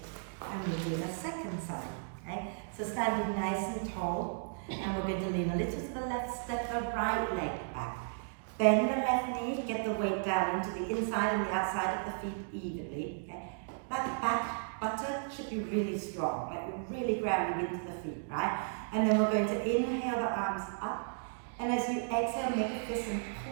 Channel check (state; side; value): silent; left; digital silence